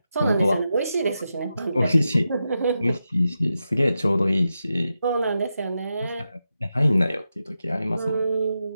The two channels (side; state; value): both; inverted; correlation -0.88